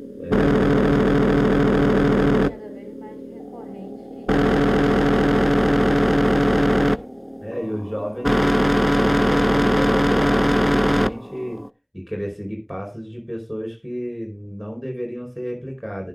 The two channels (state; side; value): identical; both; correlation 1.00